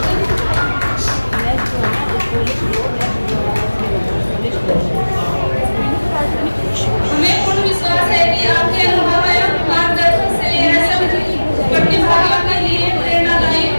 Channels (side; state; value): both; inverted; correlation -1.00